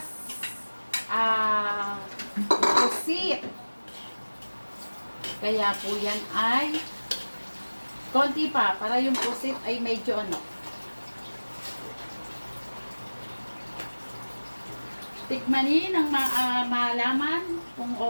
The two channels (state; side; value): inverted; both; correlation -1.00